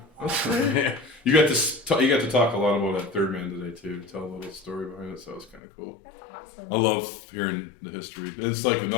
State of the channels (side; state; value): right; drops out; at 5.6 s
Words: that's great. You got to talk a lot about that third man today too. Tell a little story behind it, so it was kind of cool. That's awesome. I love hearing the history. It's like